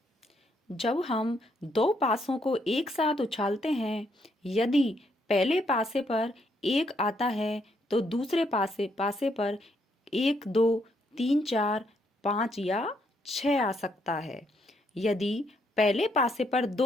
जब हम दो पासों को एक साथ उछालते हैं, यदि पहले पासे पर 1 आता है तो दूसरे पासे पर 1, 2, 3, 4, 5 या 6 आ सकता है। यदि पहले पासे पर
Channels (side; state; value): both; normal; correlation 0.74